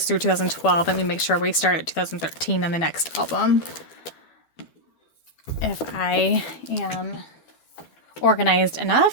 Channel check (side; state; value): right; late; 12 ms